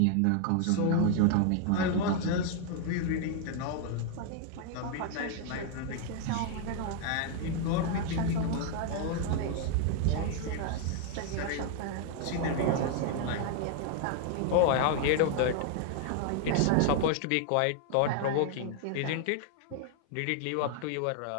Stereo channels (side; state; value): both; different; correlation 0.00